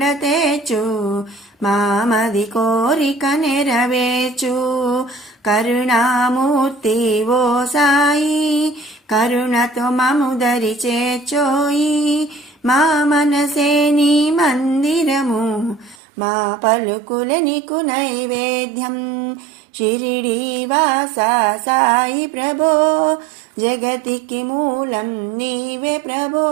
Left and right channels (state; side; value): drops out; left; at 16.0 s